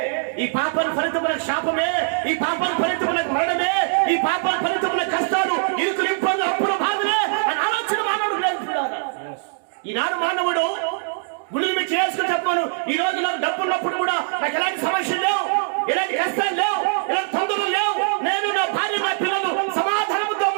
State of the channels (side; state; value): left; silent; digital silence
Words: ఈ పాపం ఫలితముల శాపమే, ఈ పాపం ఫలితముల మరణమే, ఈ పాపం ఫలితముల కష్టాలు, ఇరుకులు, ఇబ్బందులు, అప్పుల బాధలే అని ఆలోచన మానవుడు లేకున్నాడు. ఈనాడు మానవుడు గుళ్ళు మీద చేసుకుని చెప్పాను, ఈ రోజు నాకు డబ్బు ఉన్నప్పుడు కూడా నాకు ఎలాంటి సమస్యలు లేవు, ఎలాంటి కష్టాలు లేవు, ఎలాంటి తొందరలు లేవు, నేను నా భార్య నా పిల్లలు సమాధానంతో